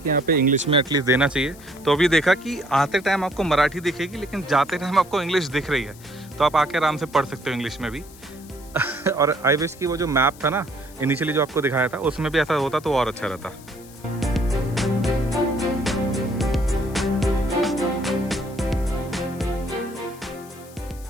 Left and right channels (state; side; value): noise; left; hiss, 22 dB below the sound